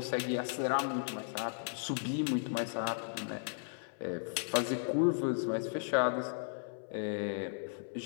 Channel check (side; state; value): right; silent; 54 dB below the other